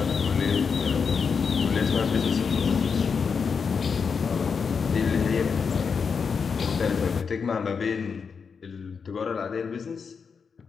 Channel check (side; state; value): right; quieter; 5.8 dB